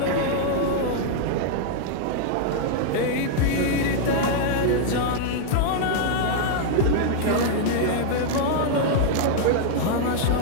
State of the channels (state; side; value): different; both; correlation -0.01